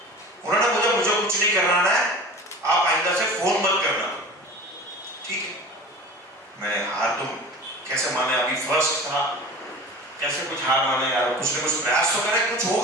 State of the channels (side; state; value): both; normal; correlation 0.37